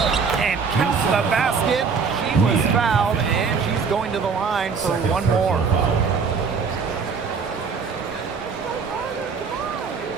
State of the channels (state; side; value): quieter; left; 5.5 dB